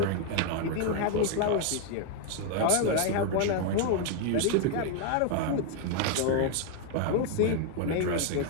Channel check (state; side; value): different; both; correlation 0.00